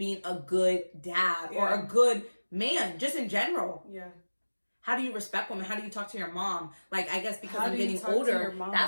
a good dad or a good man, just in general. Yeah. How do you respect women? How do you talk to your mom? Like, I guess because I'm getting older,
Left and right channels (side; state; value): both; inverted; correlation -1.00